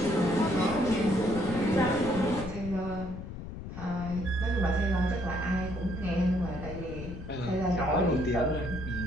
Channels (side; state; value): left; noise; rumble, 10 dB below the sound